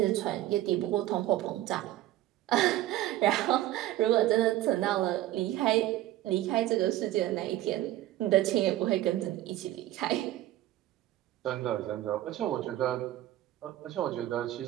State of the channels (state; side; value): quieter; left; 14.5 dB